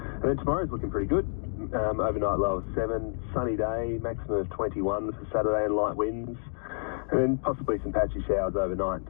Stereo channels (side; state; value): right; silent; digital silence